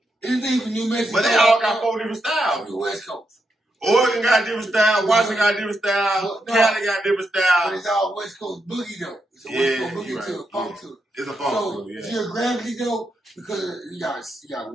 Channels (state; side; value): normal; both; correlation 0.83